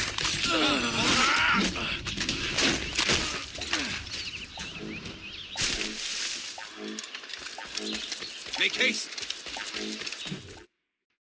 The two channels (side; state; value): both; identical; correlation 1.00